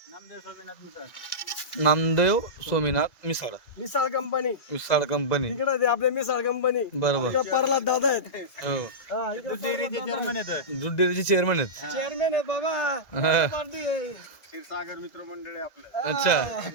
नामदेव सोमेनाथ मिसाळ. नामदेव सोमीनाथ मिसाळ. Misal company Misal company. इकडे ते आपले मिसाळ कंपनी. बरोबर. इकडे प्रल्हाद दादा आहेत. हो हा इकडे चेअरमन आहेत. दूध डेअरीचे चेअरमन आहेत. चेअरमॅन आहे बाबा. हा. पार्टी आहे. क्षीरसागर मित्र मंडळ आहे आपलं. अच्छा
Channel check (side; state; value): right; late; 1.9 ms